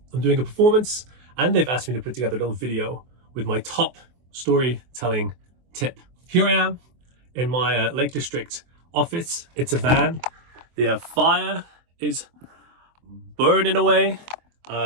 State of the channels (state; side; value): late; left; 24 ms